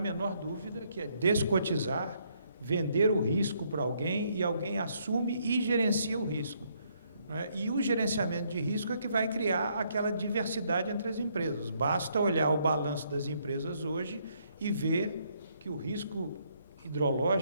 dúvida que é descotizar, vender o risco para alguém e alguém assume e gerencia o risco. E o gerenciamento de risco é que vai criar aquela diversidade entre as empresas. Basta olhar o balanço das empresas hoje e ver que o risco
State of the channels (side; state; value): both; inverted; correlation -0.71